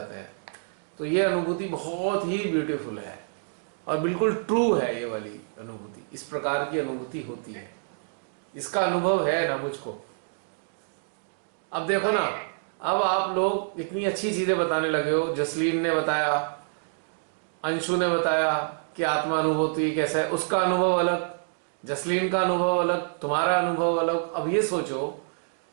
हैं। तो ये अनुभूति बहुत ही ब्यूटीफुल है और बिल्कुल ट्रू है ये वाली अनुभूति। इस प्रकार की अनुभूति होती है, इसका अनुभव है ना मुझको। अब देखो ना, अब आप लोग इतनी अच्छी चीजें बताने लगे हो, जसलीन ने बताया, अंशु ने बताया कि आत्मा अनुभूति कैसा है, उसका अनुभव अलग, जसलीन का अनुभव अलग, तुम्हारा अनुभव अलग। अब ये सोचो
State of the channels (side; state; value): left; silent; digital silence